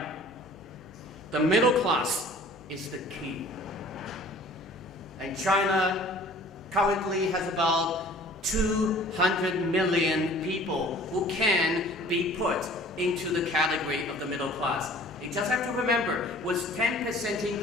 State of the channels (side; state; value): left; noise; hum, 26 dB below the sound